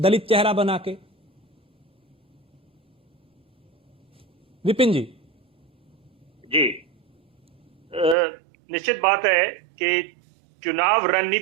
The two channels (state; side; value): drops out; left; at 8.2 s